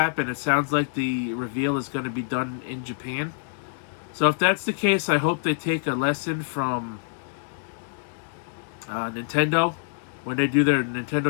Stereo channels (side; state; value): right; silent; digital silence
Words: it sounds like the reveal is going to be done in Japan. So if that's the case, I hope they take a lesson from Nintendo when they do their